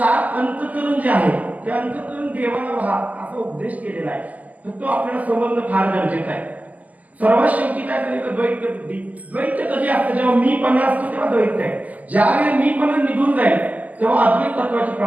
अंतःकरण जे आहे ते अंतःकरण देवाला व्हा असा उपदेश केलेला आहे. तर तो आपल्याला समजणं फार गरजेचं आहे. सर्वात शेवटी काय करायचं, द्वैत बुद्धी. द्वैत कधी असतं, जेव्हा मीपणा असतो तेव्हा द्वैत आहे. ज्यावेळी मीपणा निघून जाईल तेव्हा अद्वैत तत्वाची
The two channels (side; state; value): left; late; 0.073 ms